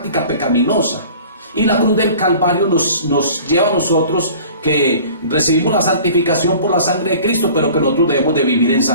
pecaminosa. Y la cruz del Calvario nos lleva a nosotros que recibimos la santificación por la sangre de Cristo, pero que nosotros debemos de vivir en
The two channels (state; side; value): inverted; both; correlation -0.45